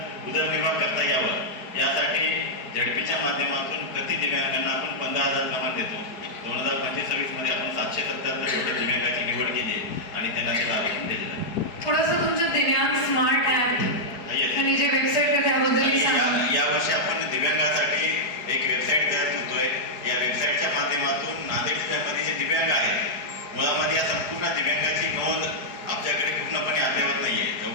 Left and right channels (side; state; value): right; late; 4.7 ms